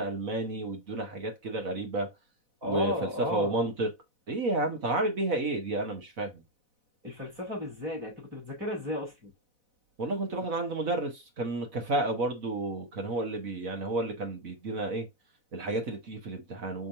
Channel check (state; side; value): late; left; 4.0 ms